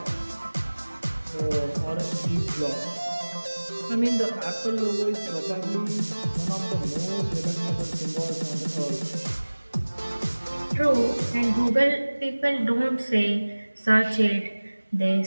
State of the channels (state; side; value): inverted; both; correlation -1.00